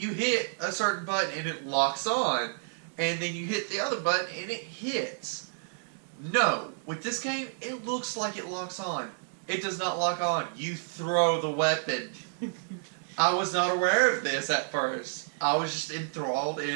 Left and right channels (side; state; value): left; silent; digital silence